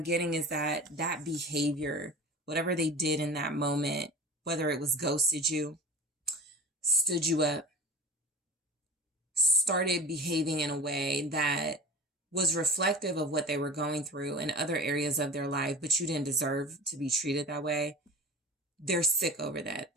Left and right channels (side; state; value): both; normal; correlation 0.34